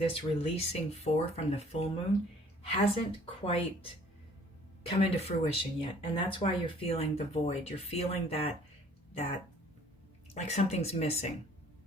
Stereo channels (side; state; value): both; normal; correlation 0.55